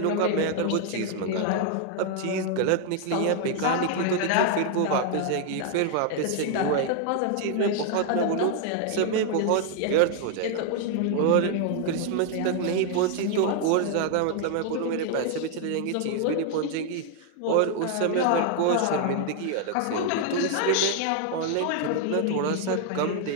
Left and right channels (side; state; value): both; different; correlation 0.00